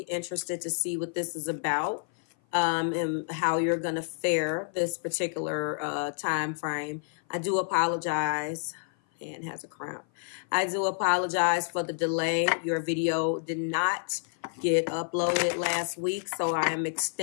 to see what this is about and how you're going to fare this particular time frame. I do apologize. And has a cramp. I do apologize for the delay. Your video did not get uploaded last week, so I am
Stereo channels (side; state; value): right; silent; 55 dB below the other